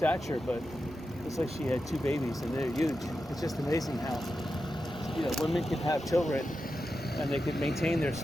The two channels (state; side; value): normal; both; correlation 0.90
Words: but looks like she had 2 babies, and they're huge. It's just amazing how, women can have children, and they can maintain their